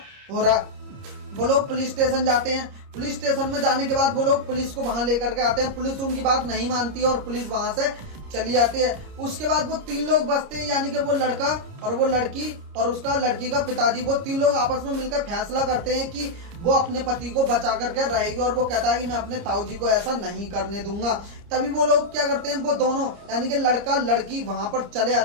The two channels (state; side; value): late; left; 29 ms